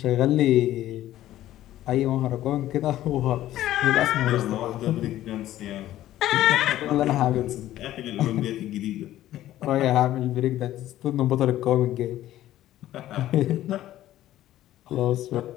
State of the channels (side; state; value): right; quieter; 13.7 dB